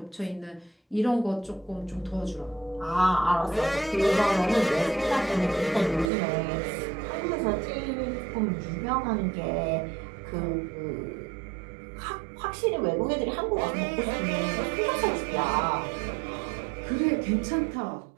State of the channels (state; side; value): drops out; left; at 6.1 s